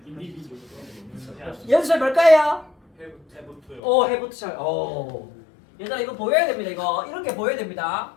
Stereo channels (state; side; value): drops out; right; at 3.8 s